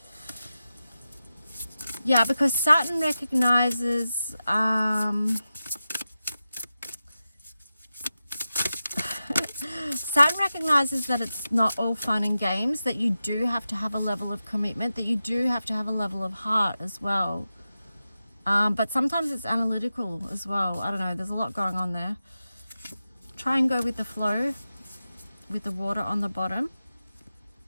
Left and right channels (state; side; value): inverted; both; correlation -0.93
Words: Yeah, because Saturn recognizes Saturn recognizes that it's not all fun and games, that you do have to have a level of commitment, that you do have to have a level of heart as well. But sometimes it's analytical as well. I don't know, there's a lot going on there. Try and go with the flow with the water on the bottom.